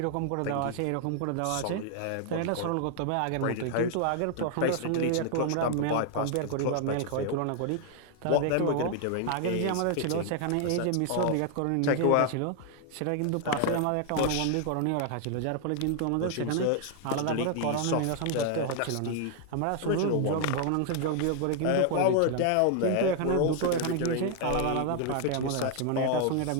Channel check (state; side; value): different; both; correlation 0.00